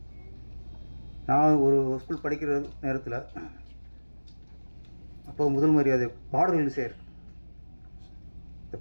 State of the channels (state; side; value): inverted; both; correlation -1.00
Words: நான் ஒரு ஸ்கூல் படிக்கிற நேரத்தில் அப்போ முதல் மரியாதை பாடல்கள் சேர் இந்த